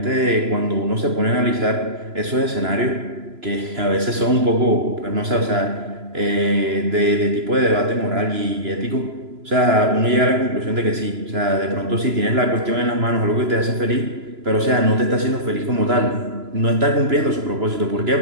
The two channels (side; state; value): left; late; 3.0 ms